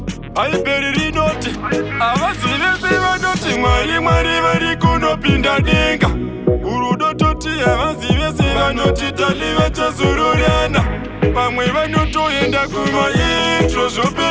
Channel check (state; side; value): identical; both; correlation 1.00